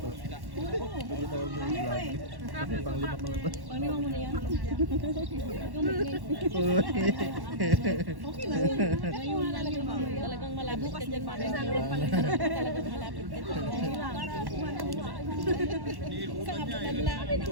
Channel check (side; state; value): left; late; 1.1 ms